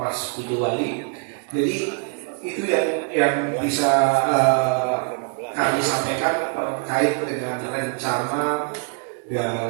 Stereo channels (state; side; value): quieter; left; 36.7 dB